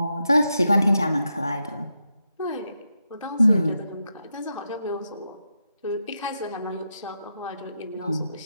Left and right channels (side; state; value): both; inverted; correlation -0.85